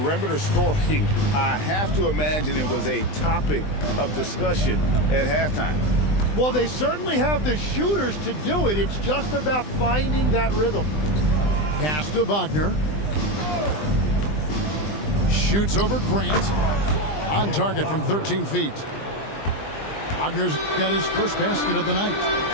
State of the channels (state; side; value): late; right; 20 ms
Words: scoring, I have to imagine it was a topic of discussion at halftime. Well, they certainly have the shooters to do it. It's just about finding that rhythm. Pass to Wagner. Shoots over Grant. On target from 13 feet. Wagner's got his first basket of the night.